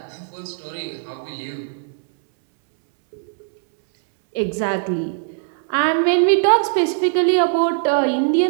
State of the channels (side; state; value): left; silent; 64 dB below the other